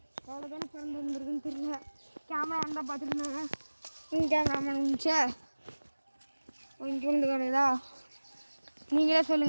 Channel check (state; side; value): inverted; both; correlation -1.00